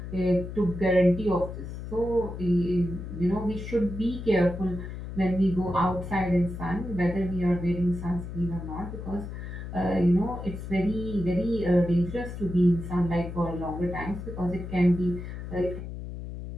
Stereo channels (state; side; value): noise; left; hum, 8 dB below the sound